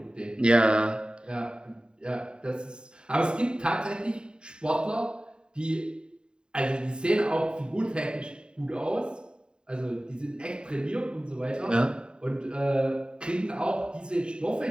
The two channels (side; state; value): left; late; 0.049 ms